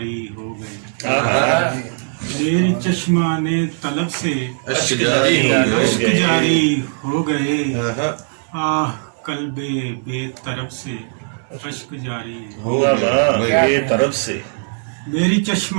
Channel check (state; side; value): silent; left; 66 dB below the other